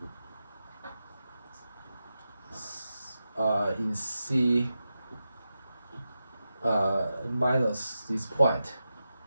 in C minus this point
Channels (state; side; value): inverted; both; correlation -0.91